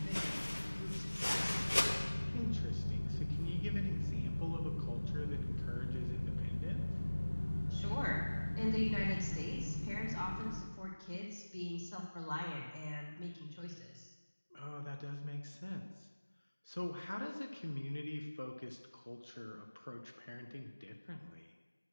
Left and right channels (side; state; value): both; inverted; correlation -1.00